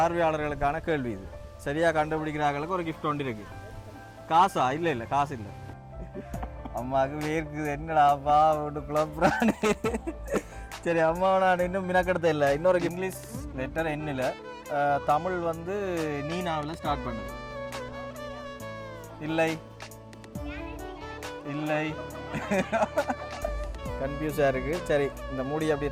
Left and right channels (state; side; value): identical; both; correlation 1.00